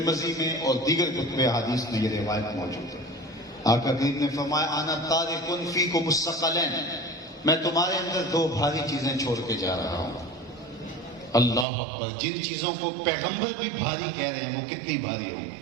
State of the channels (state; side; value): drops out; left; at 11.7 s